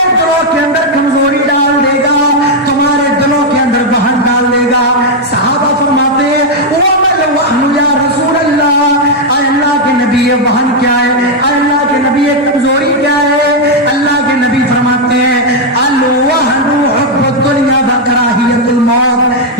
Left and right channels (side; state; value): both; normal; correlation 0.00